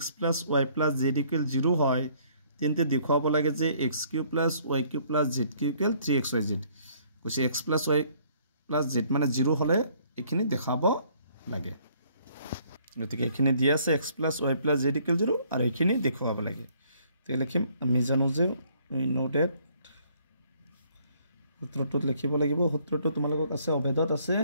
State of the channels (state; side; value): inverted; both; correlation -0.63